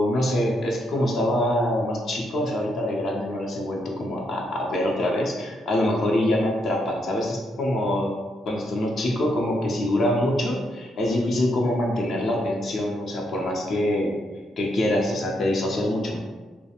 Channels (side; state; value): both; normal; correlation 0.78